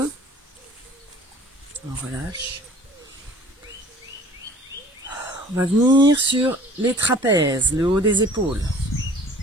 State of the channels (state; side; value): normal; both; correlation 0.49